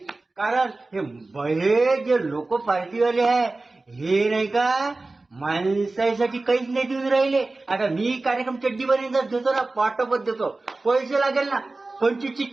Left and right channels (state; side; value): quieter; left; 3.3 dB